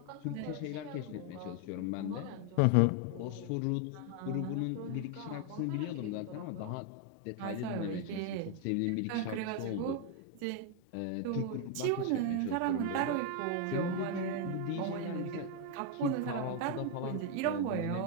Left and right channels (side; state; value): both; different; correlation 0.01